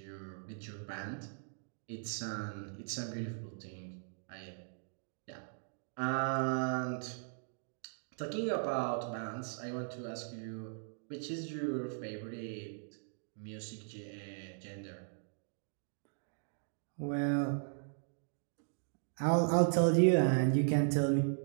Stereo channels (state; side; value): silent; left; digital silence